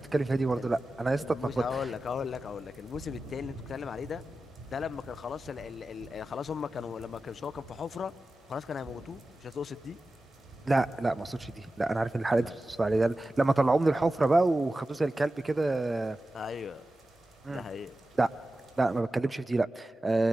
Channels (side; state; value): both; normal; correlation 0.93